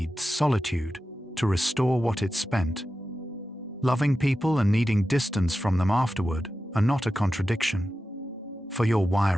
solitude to restore what it spent. Loving people and needing distance from them afterward are not a contradiction. For your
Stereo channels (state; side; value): normal; both; correlation 0.92